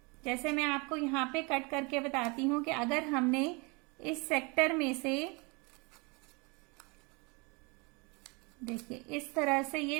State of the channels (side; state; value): left; quieter; 29.2 dB